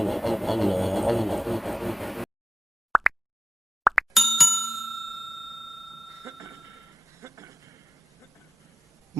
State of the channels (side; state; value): both; normal; correlation 0.94